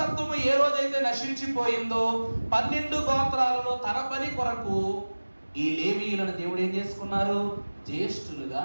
ఏ రోజైతే నశించిపోయిందో 12 గోత్రాలలో తన పని కొరకు ఈ లేవీయులను దేవుడు ఏం చేసుకున్నారు? జ్యేష్ఠులుగా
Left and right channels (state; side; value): inverted; both; correlation -1.00